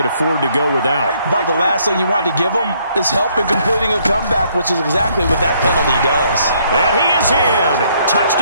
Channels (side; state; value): both; inverted; correlation -0.67